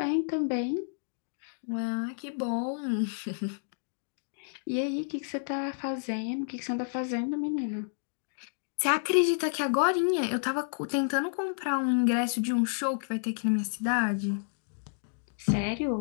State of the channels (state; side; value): silent; right; digital silence